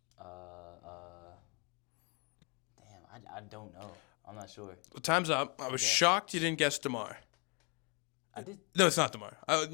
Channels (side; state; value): right; quieter; 34.7 dB